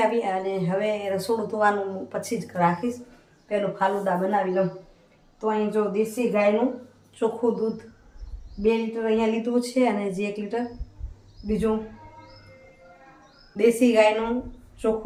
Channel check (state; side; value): identical; both; correlation 1.00